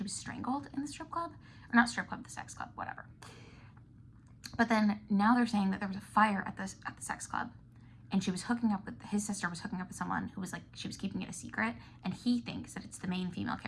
was strangled in the strip club, or not strip club, the sex club, whatever. But then now they're saying that there was a fire at the sex club, and she was hooking up with, his sister was hooking up with someone who was like, she was keeping it a secret, and he thinks that it's the main female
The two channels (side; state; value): both; identical; correlation 1.00